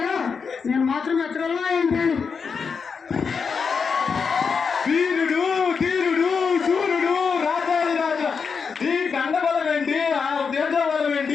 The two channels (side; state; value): right; quieter; 5.7 dB